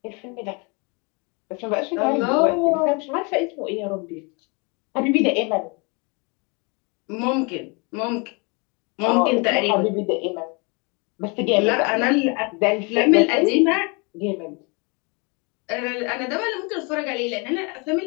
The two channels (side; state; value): right; quieter; 31.2 dB